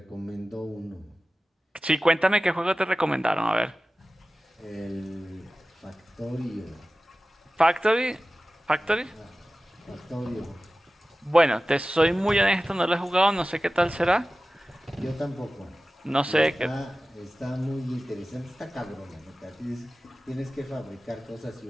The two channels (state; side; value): normal; both; correlation 0.96